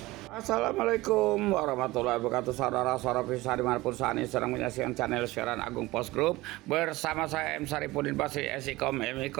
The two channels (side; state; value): left; quieter; 19.7 dB